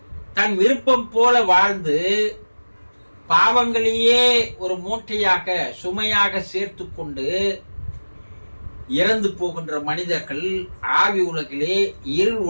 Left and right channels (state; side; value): inverted; both; correlation -1.00